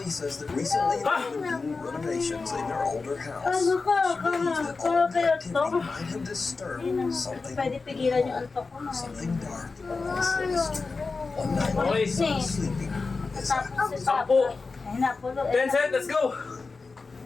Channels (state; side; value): quieter; right; 4.1 dB